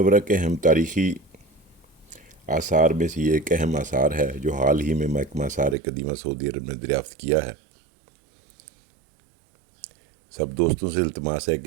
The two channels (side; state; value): left; drops out; at 5.8 s